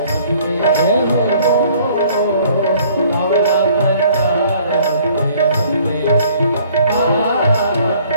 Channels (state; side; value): inverted; both; correlation -0.57